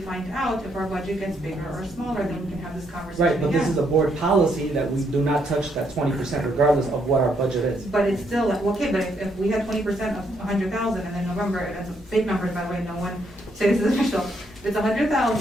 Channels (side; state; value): both; normal; correlation 0.74